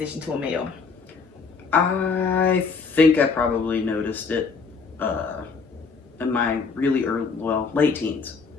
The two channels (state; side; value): quieter; right; 5.0 dB